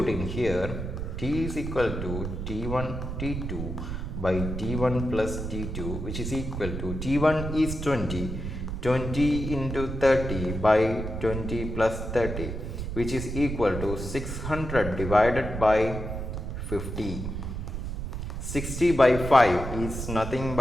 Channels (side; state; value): right; noise; rumble, 5 dB below the sound